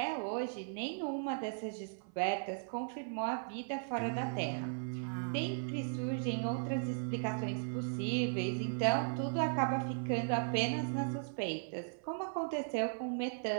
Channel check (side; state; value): left; silent; 53 dB below the other